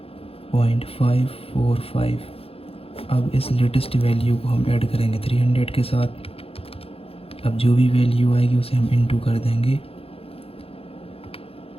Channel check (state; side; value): late; right; 0.28 ms